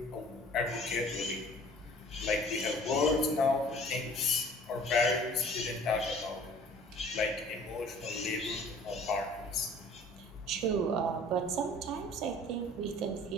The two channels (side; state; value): both; normal; correlation 0.49